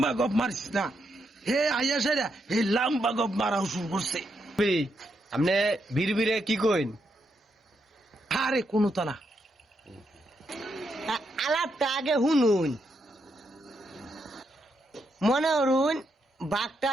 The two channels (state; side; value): normal; both; correlation 0.80